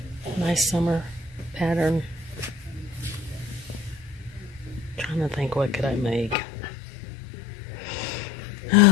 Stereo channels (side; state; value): right; drops out; at 6.4 s